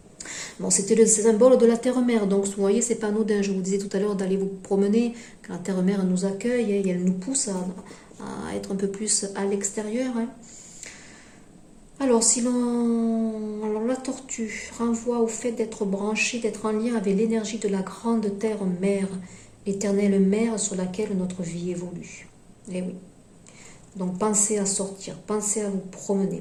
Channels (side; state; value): both; identical; correlation 1.00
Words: Bon, c'était le symbole de la terre-mère, donc vous voyez, c'est pas anodin. Je vous disais tout à l'heure d'aller vous promener, quand la terre-mère nous accueille et elle nous pousse à être un peu plus à l'extérieur. Hein. Alors, alors, la tortue renvoie au fait d'être branché, d'être en lien avec l'énergie de la grande terre-mère, l'éternelle mère sur laquelle notre vie évolue. Eh oui. Donc, pensez à sortir, pensez à vous